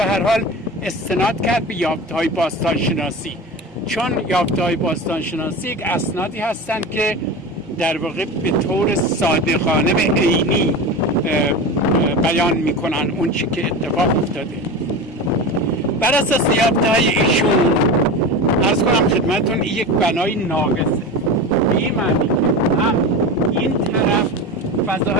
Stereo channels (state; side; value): normal; both; correlation 0.28